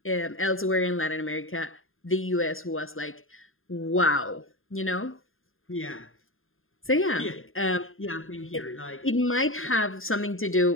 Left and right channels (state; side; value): late; right; 0.60 ms